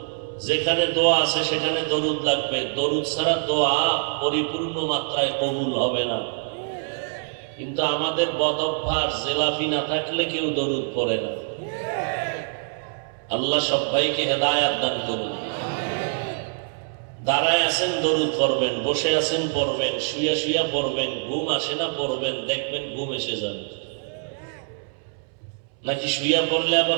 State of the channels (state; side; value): silent; left; 62 dB below the other